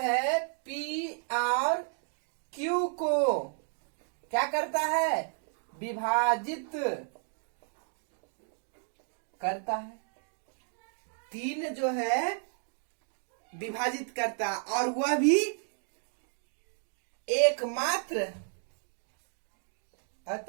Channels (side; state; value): left; silent; 56 dB below the other